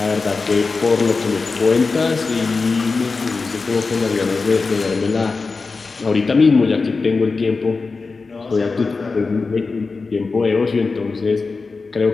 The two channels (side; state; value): right; quieter; 4.2 dB